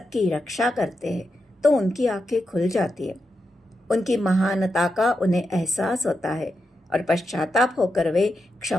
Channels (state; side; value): normal; both; correlation 0.87